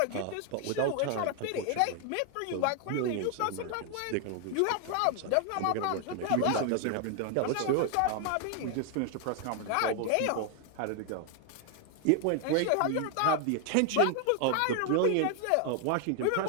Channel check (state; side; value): different; both; correlation 0.01